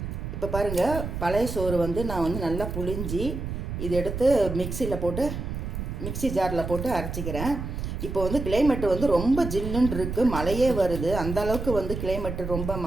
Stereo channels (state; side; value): noise; right; rumble, 5 dB below the sound